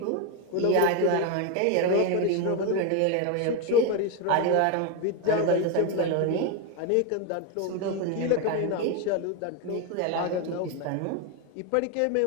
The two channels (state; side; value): different; both; correlation 0.02